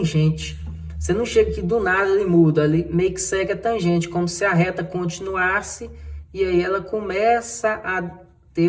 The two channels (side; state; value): both; identical; correlation 1.00